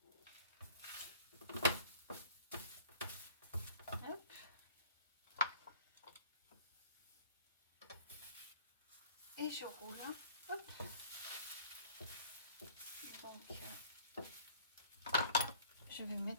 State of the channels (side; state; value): both; inverted; correlation -0.51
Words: Hop. Et je roule. Hop. Donc, je vais